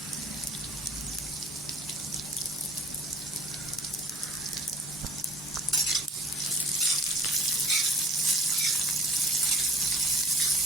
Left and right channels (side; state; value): both; normal; correlation 0.48